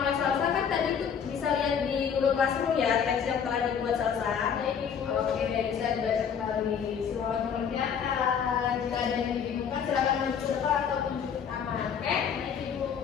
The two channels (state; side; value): quieter; right; 7.4 dB